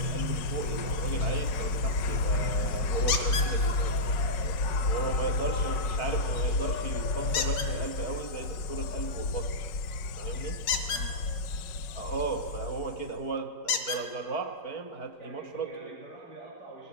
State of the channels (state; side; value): late; right; 5.1 ms